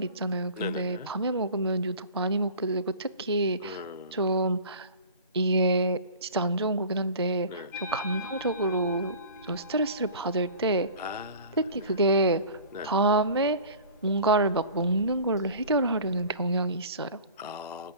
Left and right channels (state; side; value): inverted; both; correlation -0.41